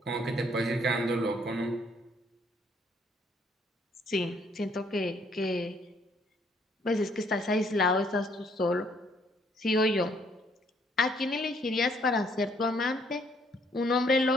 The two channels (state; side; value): normal; both; correlation 0.66